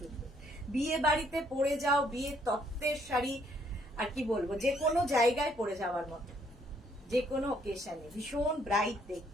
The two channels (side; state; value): both; normal; correlation 0.67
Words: বিয়ে বাড়িতে পরে যাও, বিয়ের তত্ত্বের শাড়ি, আর কি বলবো, যে কোনো জায়গায় পরে যাওয়ার মতো, যে কোনো অকেশনে ভীষণ ব্রাইট